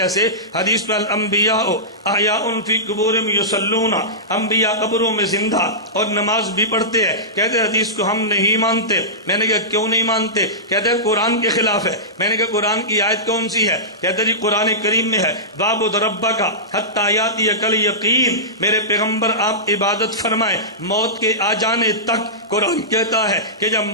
حدیث میں الانبیاء احیاء فی قبورہم یصلون، انبیاء قبروں میں زندہ اور نماز بھی پڑھتے ہیں۔ کہتے حدیث کو ہم نہیں مانتے۔ میں نے کہا کیوں نہیں مانتے؟ کہتے ہیں قرآن کے خلاف ہے۔ میں نے کہا قرآن کی آیت کون سی ہے؟ کہتے جی قرآن کریم میں ہے وَاعْبُدْ رَبَّكَ حَتَّىٰ يَأْتِيَكَ الْيَقِينُ، میرے پیغمبر آپ عبادت فرمائیں موت کے آ جانے تک قرآن کہتا ہے کہ جب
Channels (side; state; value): both; normal; correlation -0.17